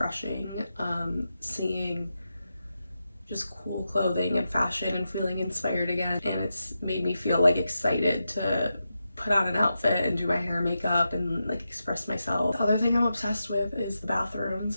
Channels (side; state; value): both; inverted; correlation -0.89